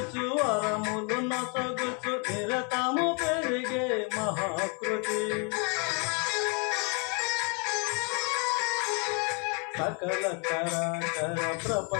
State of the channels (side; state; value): right; quieter; 35.9 dB